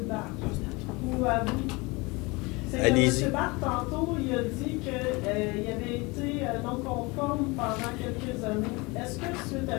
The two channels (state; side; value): quieter; right; 25.4 dB